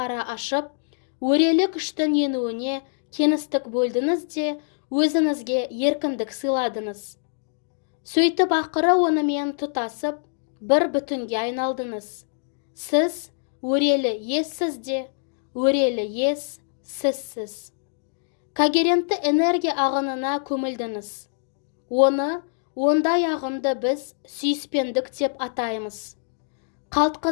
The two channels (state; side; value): silent; right; digital silence